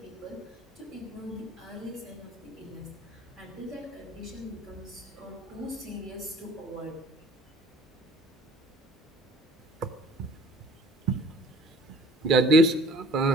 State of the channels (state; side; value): normal; both; correlation 0.50